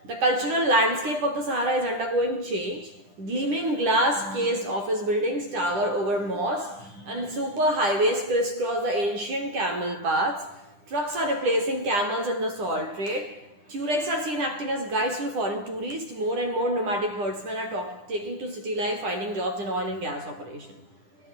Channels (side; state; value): left; late; 10 ms